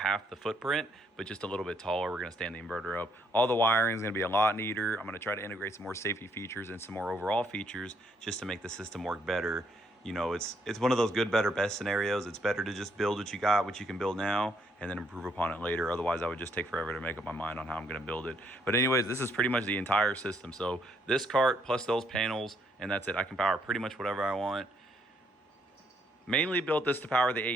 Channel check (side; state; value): both; normal; correlation 0.71